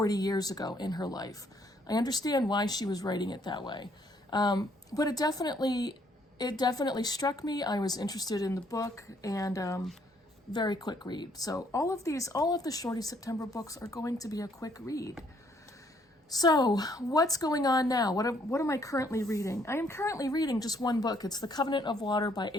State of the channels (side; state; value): both; normal; correlation 0.67